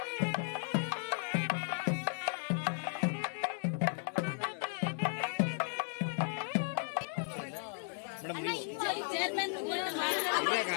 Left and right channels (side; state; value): right; silent; 54 dB below the other